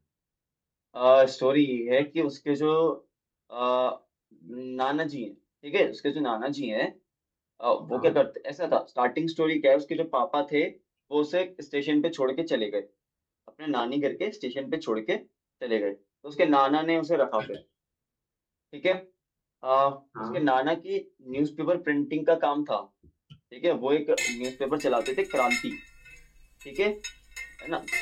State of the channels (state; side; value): identical; both; correlation 1.00